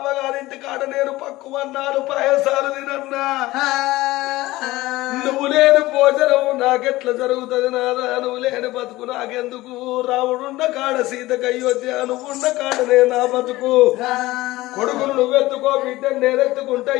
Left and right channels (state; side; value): quieter; right; 18.3 dB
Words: కాడ నేను పక్కువన్నాను పాయసాలు తినన్నా నువ్వు లేని భోజనం నాకెట్లా జరుగుతుంది నాదా నువ్వు లేని బతుకు నాకెందుకు రాముడున్న కాడ సీతకు అయోధ్య నువ్వున్న కాడనే నా బతుకు కొడుకును నువ్వెత్తుకో బిడ్డను నేనెత్తుకుంటే